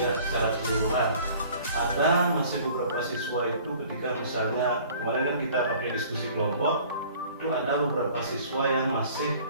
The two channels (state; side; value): inverted; both; correlation -0.51